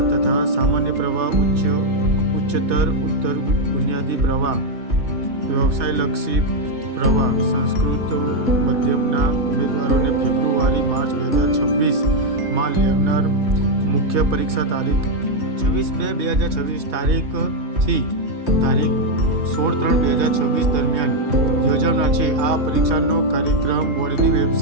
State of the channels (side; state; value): left; late; 3.2 ms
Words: તથા સામાન્ય પ્રવાહ ઉચ્ચતર બુનિયાદી પ્રવાહ વ્યવસાયલક્ષી પ્રવાહ સંસ્કૃત મધ્યમના ઉમેદવારોને ફેબ્રુઆરી-માર્ચ 2026માં લેનાર મુખ્ય પરીક્ષા તારીખ 26/2/2026 તારીખથી તારીખ 16/3/2026 દરમિયાન યોજાનાર છે. આ પરીક્ષાનો કાર્યક્રમ બોર્ડની